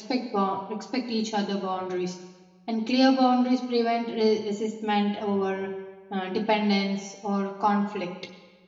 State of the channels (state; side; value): identical; both; correlation 1.00